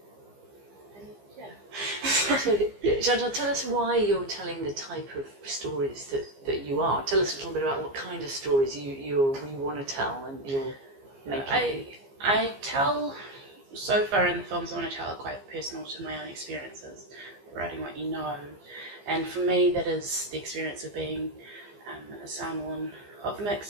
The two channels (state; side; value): late; left; 15 ms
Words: yeah. So, Chantelle, tell us why you're telling the type of stories that you are. Tell us a little bit about what kind of stories you want to tell and you're making. I tell, so far in the films I want to tell are quite personal to my own experiences, writing what you know, and for me that is the experience of being a Samoan of